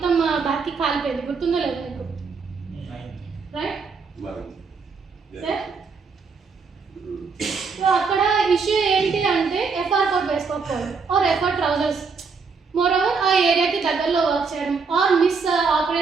బ్యాక్కి కాలిపోయింది. గుర్తుందో లేదు మీకు? Right sir. సో అక్కడ ఇష్యూ ఏంటి అంటే ఎఫ్ఆర్ కోట్ వేసుకోకపోవడం, or FR trousers, more over ఆ ఏరియాకి దగ్గరలో వర్క్ చేయడం, or miss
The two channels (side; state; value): left; quieter; 5.0 dB